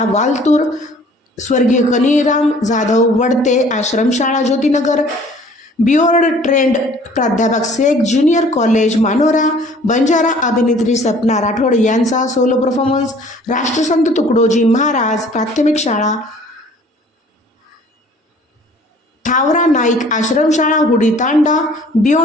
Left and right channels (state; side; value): normal; both; correlation 0.53